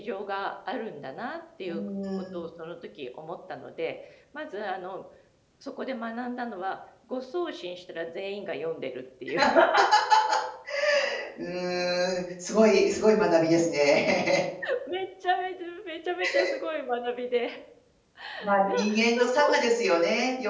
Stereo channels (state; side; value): identical; both; correlation 1.00